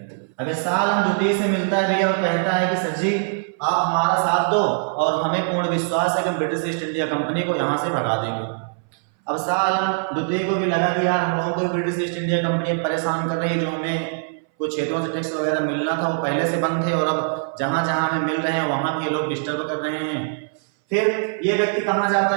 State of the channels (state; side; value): silent; left; 61 dB below the other